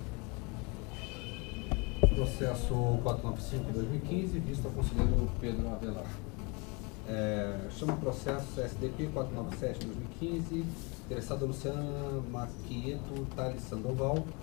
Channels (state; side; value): quieter; right; 29.5 dB